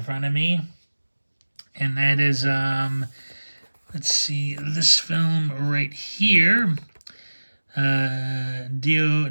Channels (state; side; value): inverted; both; correlation -1.00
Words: front of me. And that is, let's see, this film right here, Dio